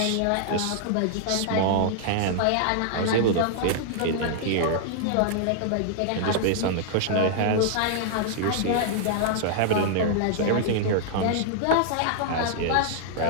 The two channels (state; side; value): different; both; correlation -0.01